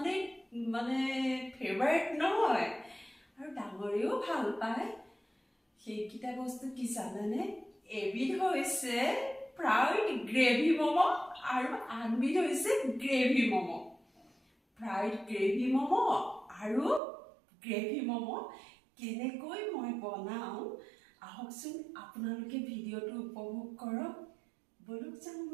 ফেভাৰিট নহয় আৰু ডাঙৰেও ভাল পায়। সেইকেইটা বস্তু কি জানেনে? এবিধ হৈছে ফ্ৰাইড গ্ৰেভি ম'ম' আৰু আনবিধ হৈছে gravy momo'. Fried gravy momo' আৰু গ্ৰেভি ম'ম' কেনেকৈ মই বনাওঁ আহকচোন, আপোনালোকে ভিডিঅ'টো উপভোগ কৰক। বলক যাওঁ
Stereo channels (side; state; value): left; drops out; at 17.0 s